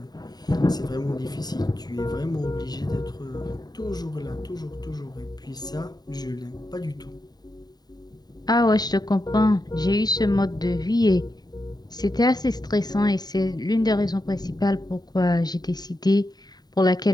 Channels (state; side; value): late; right; 0.20 ms